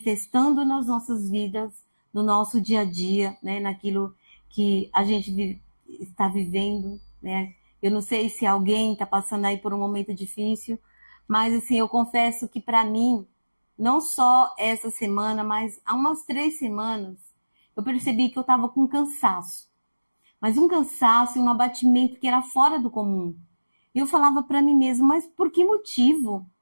nas nossas vidas, no nosso dia a dia, né? Naquilo que a gente está vivendo, né? Eu não sei se alguém está passando aí por um momento difícil, mas assim, eu confesso que para mim, não só essa semana, mas há umas 3 semanas, eu percebi que eu estava com cansaço. Mas um cansaço e um abatimento que era fora do comum. E eu falava para mim mesma, mas por que motivo,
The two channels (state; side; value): inverted; both; correlation -1.00